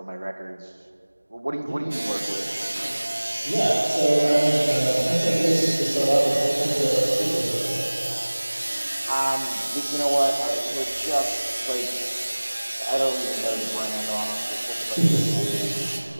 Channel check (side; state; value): both; inverted; correlation -1.00